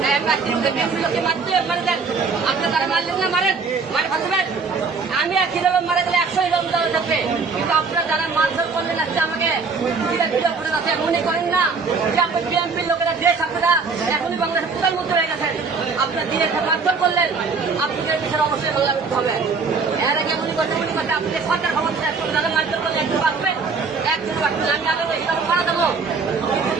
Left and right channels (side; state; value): left; quieter; 4.7 dB